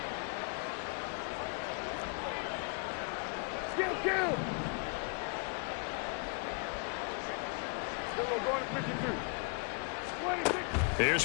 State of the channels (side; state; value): right; quieter; 37.4 dB